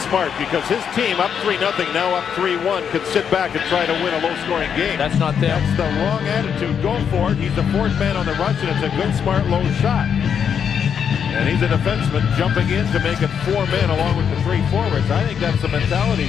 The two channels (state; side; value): quieter; right; 7.6 dB